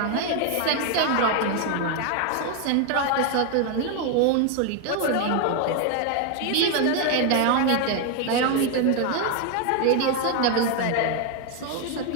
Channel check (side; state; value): both; different; correlation 0.01